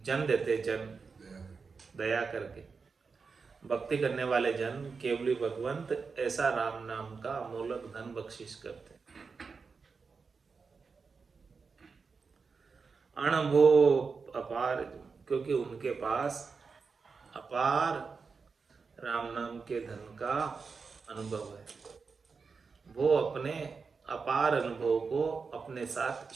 जन देते, जन दया करके। भक्ति करने वाले जन केवली भगवंत ऐसा राम नाम का अमूलक धन बख्शिश करते। अणभो अपार, क्योंकि उनके पास अपार राम नाम के धन का अनुभव है। वो अपने अपार अनुभव को अपने साथ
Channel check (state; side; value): quieter; left; 5.0 dB